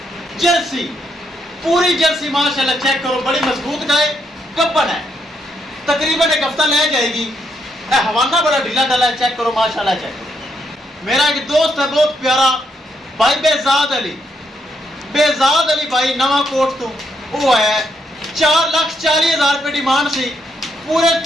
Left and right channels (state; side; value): normal; both; correlation 0.77